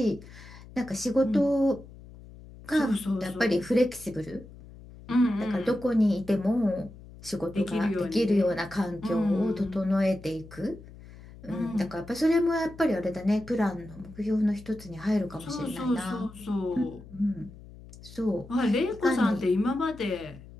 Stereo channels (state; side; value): noise; left; hum, 18 dB below the sound